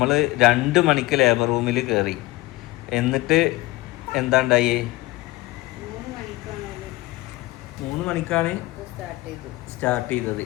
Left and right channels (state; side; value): quieter; right; 20.2 dB